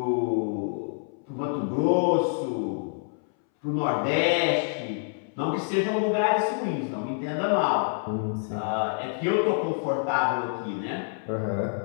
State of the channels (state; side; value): silent; right; 60 dB below the other